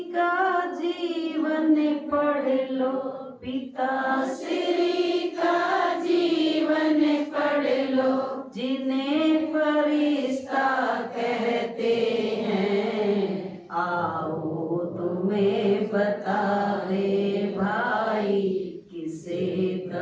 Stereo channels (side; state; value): both; identical; correlation 1.00